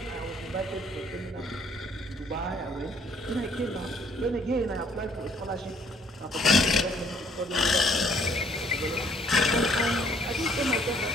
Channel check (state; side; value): normal; both; correlation 0.62